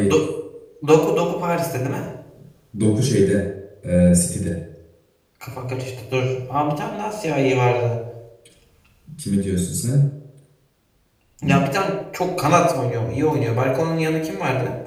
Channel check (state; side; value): identical; both; correlation 1.00